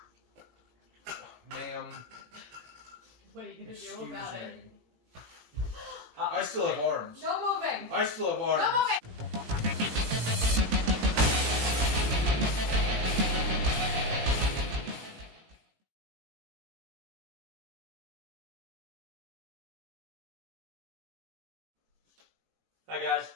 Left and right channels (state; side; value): late; left; 18 ms